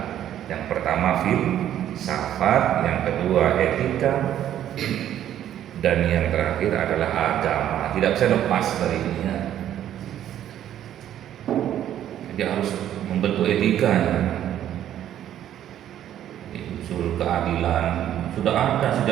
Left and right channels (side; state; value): left; quieter; 11.2 dB